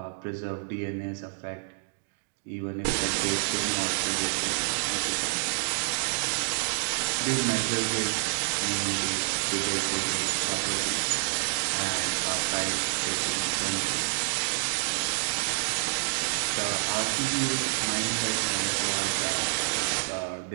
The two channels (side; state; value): left; silent; digital silence